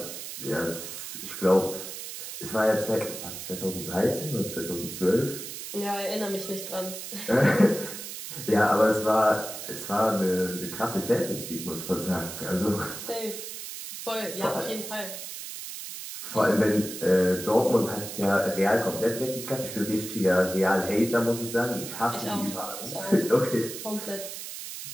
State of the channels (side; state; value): right; noise; hiss, 9 dB below the sound